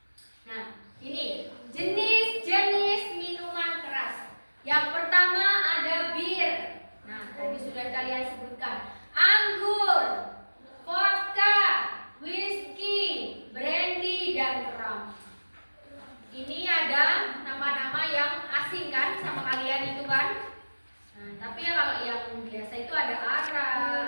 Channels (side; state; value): both; inverted; correlation -1.00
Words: Nah, ini jenis-jenis minuman keras. Yang pertama ada bir. Nah, tadi sudah kalian sebutkan. Anggur, vodka, whisky, brandy, dan rum. Ini ada nama-nama yang asing kan sama kalian itu kan? Nah, tapi ya kalau yang biasa itu ada ara,